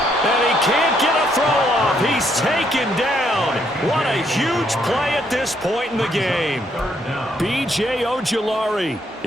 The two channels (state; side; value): normal; both; correlation 0.72